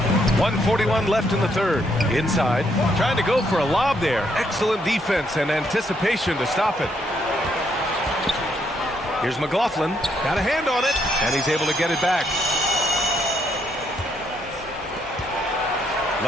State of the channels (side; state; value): both; normal; correlation 0.74